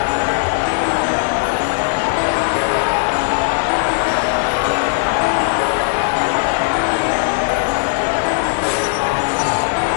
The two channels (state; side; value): silent; right; 62 dB below the other